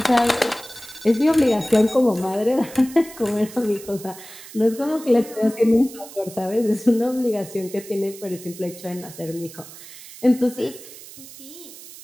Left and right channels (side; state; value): right; noise; hiss, 17 dB below the sound